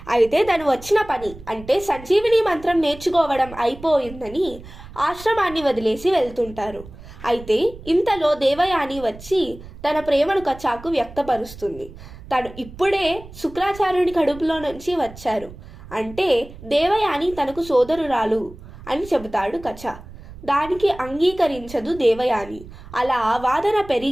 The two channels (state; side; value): noise; right; rumble, 17 dB below the sound